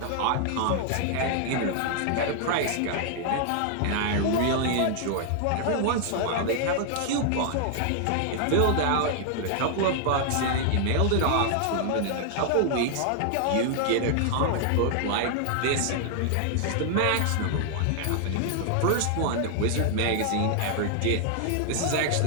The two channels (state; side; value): different; both; correlation 0.00